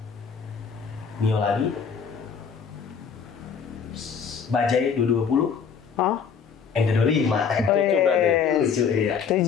Bajaj 220, MT25. 7 berarti. 7 ya.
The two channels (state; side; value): quieter; right; 6.5 dB